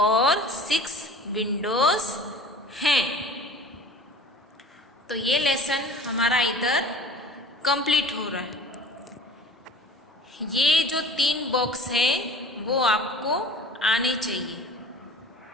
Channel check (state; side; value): normal; both; correlation 0.44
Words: 6 विंडोज हैं। तो ये लेसन हमारा इधर कंप्लीट हो रहा है। ये जो 3 बॉक्स है वो आपको आने चाहिए,